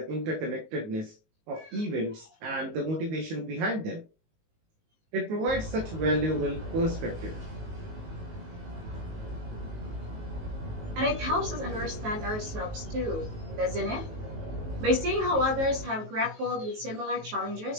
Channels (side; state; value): left; late; 19 ms